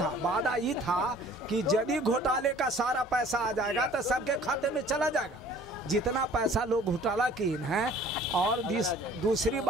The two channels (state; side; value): normal; both; correlation 0.52